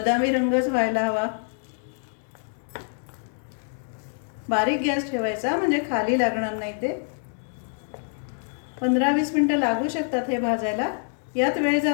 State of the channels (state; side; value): silent; right; 61 dB below the other